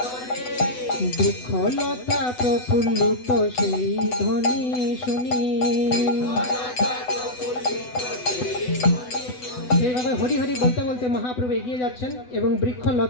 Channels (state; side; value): late; right; 8.0 ms